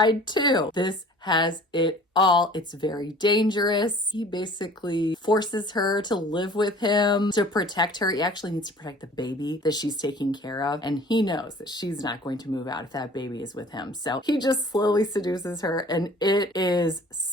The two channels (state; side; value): normal; both; correlation 0.48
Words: too. This has it all. It's very dangerous. He basically forces her to live with him to protect her. He actually needs to protect the baby that she's taking care of. And he knows that she's not going to move out if that baby is with him. So he just slowly seduces her, and it is